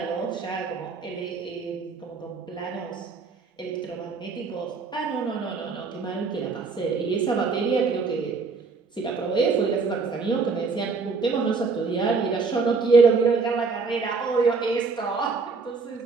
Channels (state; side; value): quieter; left; 4.6 dB